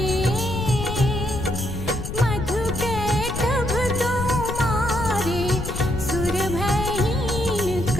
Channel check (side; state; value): left; noise; rumble, 6 dB below the sound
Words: मधु कैटभ दो मारे सुर भयहीन